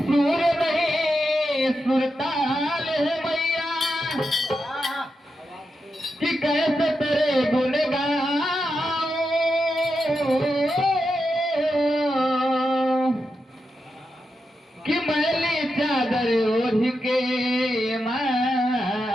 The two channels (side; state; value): both; normal; correlation 0.87